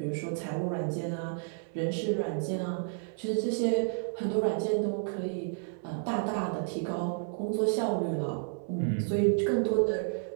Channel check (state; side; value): silent; left; 57 dB below the other